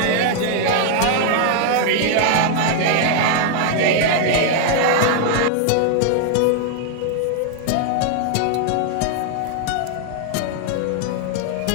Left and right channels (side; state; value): both; different; correlation 0.00